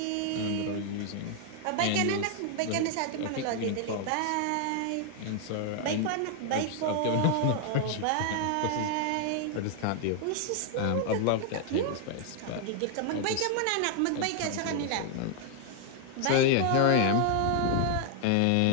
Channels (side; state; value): both; different; correlation 0.00